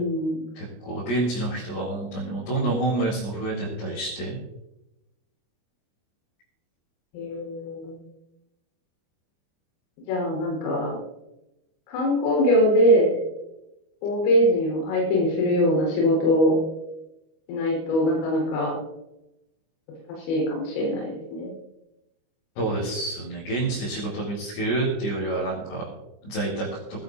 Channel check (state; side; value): late; right; 25 ms